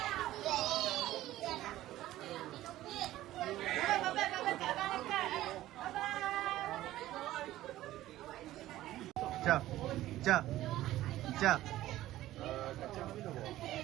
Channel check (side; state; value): left; quieter; 14.9 dB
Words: Jap. Jap. Jap.